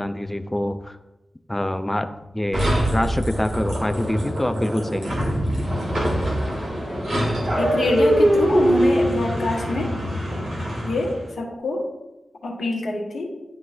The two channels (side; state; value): both; normal; correlation 0.93